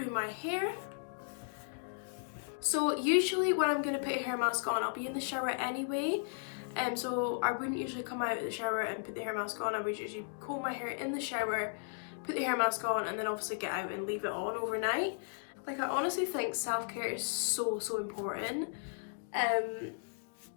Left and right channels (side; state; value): right; silent; digital silence